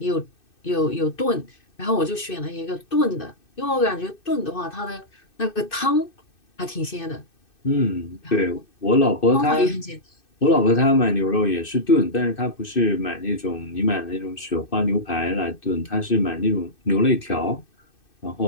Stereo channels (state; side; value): late; right; 2.6 ms